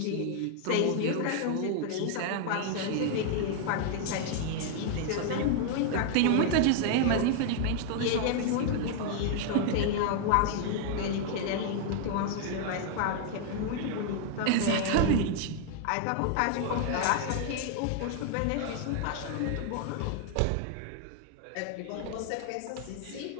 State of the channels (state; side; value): different; both; correlation 0.00